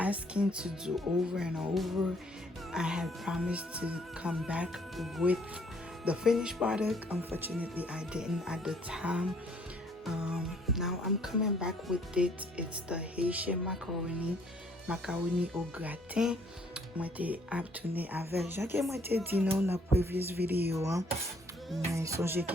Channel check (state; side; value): normal; both; correlation 0.63